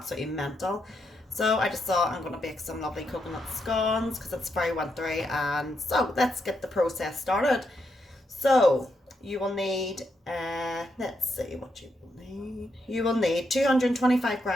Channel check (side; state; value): both; normal; correlation 0.81